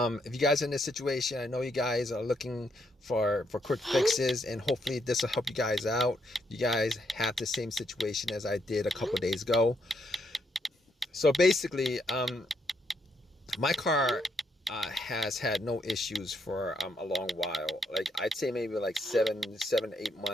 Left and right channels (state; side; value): normal; both; correlation 0.76